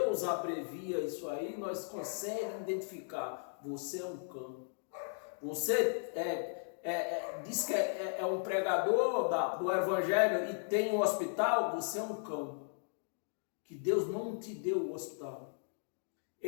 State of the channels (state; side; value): silent; right; digital silence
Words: abrevia isso aí, nós conseguimos identificar, você é um cão, você diz que é um pregador do evangelho e tem um hospital, você é um cão, que Deus não te deu o hospital.